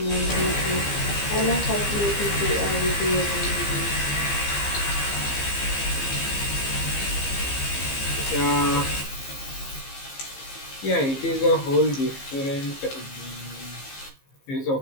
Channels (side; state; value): right; late; 15 ms